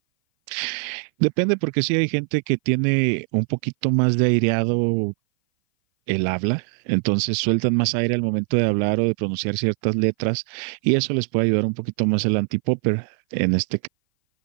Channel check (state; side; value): silent; left; 57 dB below the other